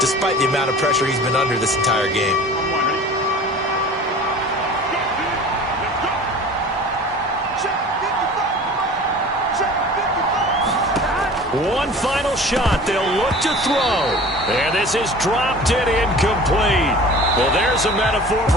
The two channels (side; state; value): both; normal; correlation 0.41